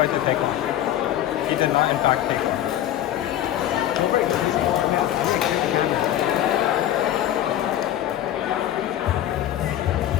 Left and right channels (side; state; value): right; quieter; 12.2 dB